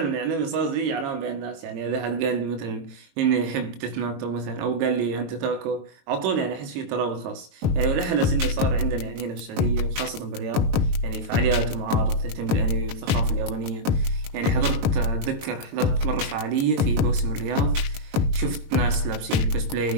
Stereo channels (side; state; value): left; late; 22 ms